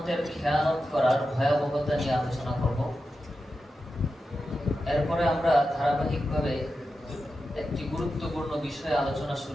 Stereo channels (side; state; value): both; normal; correlation 0.90